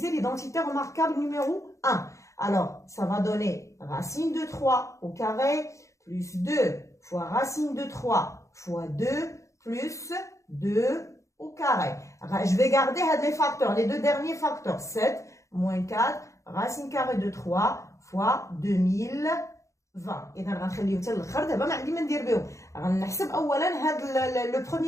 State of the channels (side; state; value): right; late; 0.15 ms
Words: l'identité remarquable numéro 1. Alors, ça va donner racine de 3 au carré plus 2 fois racine de 3 fois 2 plus 2 au carré. Je vais garder les facteurs, les deux derniers facteurs. 7 moins 4 racine carrée de 3 fois 2020. إذا غنخليهم حتى الاخر دابا ما عندي ما ندير بهم. غنحسب أولا هذا le